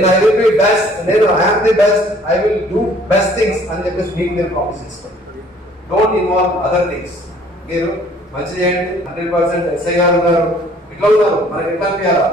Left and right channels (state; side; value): normal; both; correlation 0.57